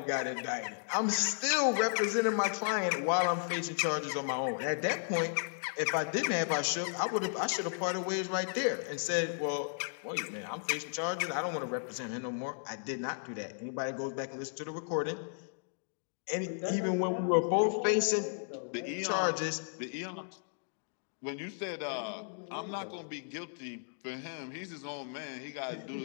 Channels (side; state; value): right; silent; digital silence